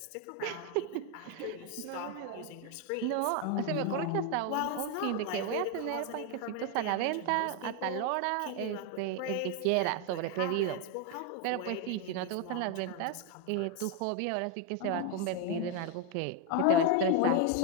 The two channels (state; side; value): different; both; correlation 0.01